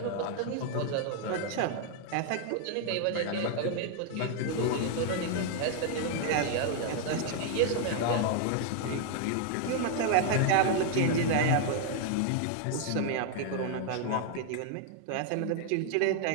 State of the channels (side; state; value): both; different; correlation 0.00